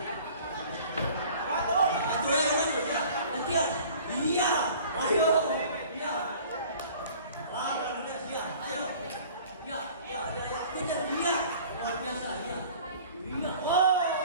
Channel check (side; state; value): both; inverted; correlation -0.48